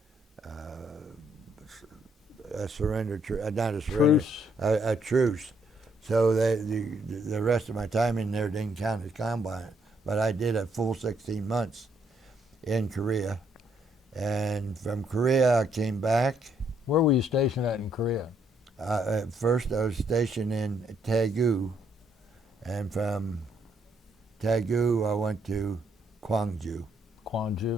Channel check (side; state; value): both; normal; correlation 0.71